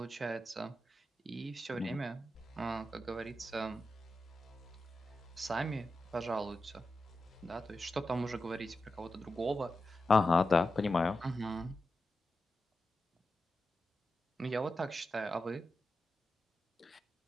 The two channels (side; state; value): both; normal; correlation 0.90